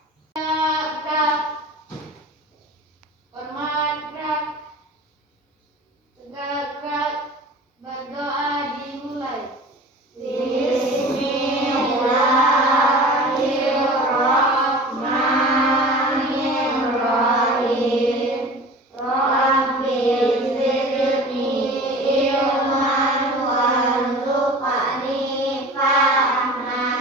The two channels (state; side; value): normal; both; correlation 0.39